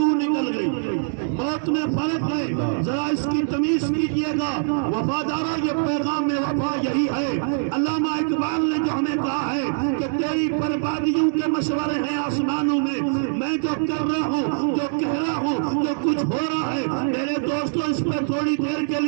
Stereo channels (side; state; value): left; silent; digital silence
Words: نکل گئی۔ موت میں فرق ہے، ذرا اس کی تمیز کیجئے گا وفادارہ، یہ پیغام وفا یہی ہے۔ علامہ اقبال نے جو ہمیں کہا ہے کہ تیری بربادیوں کے مشورے ہیں آسمانوں میں، میں جو کر رہا ہوں، جو کہہ رہا ہوں، جو کچھ ہو رہا ہے، میرے دوستو اس پہ تھوڑی دیر کے